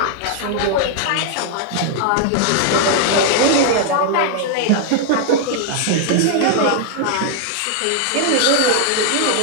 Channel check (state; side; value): different; both; correlation -0.01